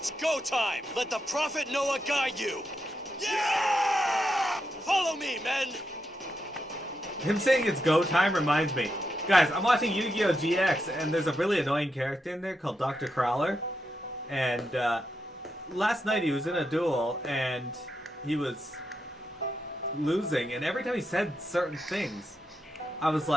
go time! Let the Prophet Noah guide you! Yeah! Follow me, men! Him saying it's go time reminds me. Guys, I'm watching Yu-Gi-Oh! GX, and there's a really annoying character in there called Dr. Crowler. And last night he was in a duel, and he was losing, and every time he said certain things, I was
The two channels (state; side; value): normal; both; correlation 0.84